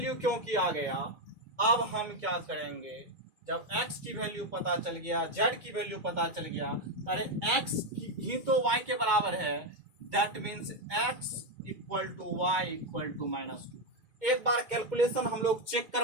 क्योंकि आ गया, अब हम क्या करेंगे, जब x की वैल्यू पता चल गया, z की वैल्यू पता चल गया, अरे x ही तो y के बराबर है, that means x equal to y equal to minus 2। एक बार कैलकुलेशन हम लोग चेक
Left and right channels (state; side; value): late; left; 2.2 ms